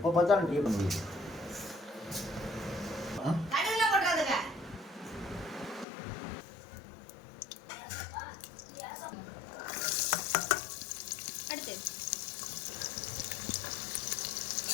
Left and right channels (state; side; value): drops out; right; at 5.9 s